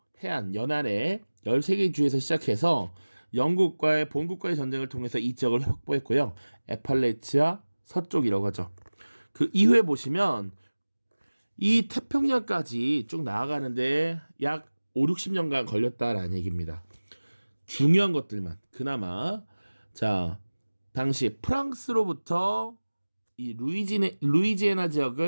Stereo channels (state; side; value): inverted; both; correlation -1.00